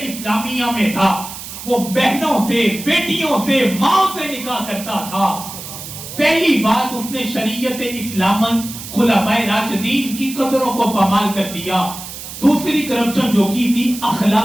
اسلامیہ میں تھا، وہ بہنوں سے، بیٹیوں سے، ماں سے نکاح کرتا تھا۔ پہلی بات اس نے شریعت اسلام خلفائے راشدین کی قدروں کو پامال کر دیا۔ دوسری کرپشن جو کی تھی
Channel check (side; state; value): right; noise; hiss, 11 dB below the sound